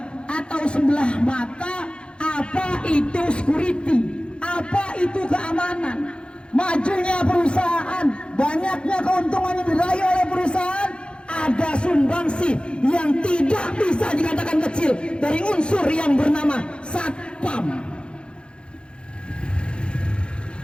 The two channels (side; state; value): right; late; 0.055 ms